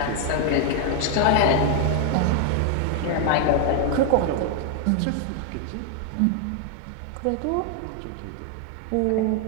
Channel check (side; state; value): both; different; correlation 0.00